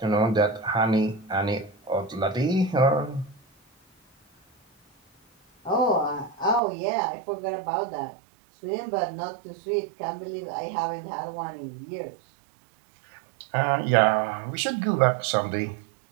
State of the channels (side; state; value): left; drops out; at 6.6 s